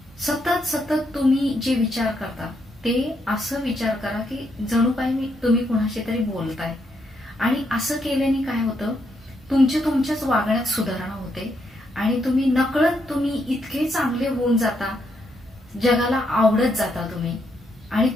सतत तुम्ही जे विचार करता ते असं विचार करा की जणू काही तुम्ही कुणाशी तरी बोलताय. आणि असं केल्याने काय होतं, तुमच्याच वागण्यात सुधारणा होते आणि तुम्ही नकळत इतके चांगले होऊन जाता, जगाला आवडत जाता तुम्ही. आणि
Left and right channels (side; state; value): both; normal; correlation 0.77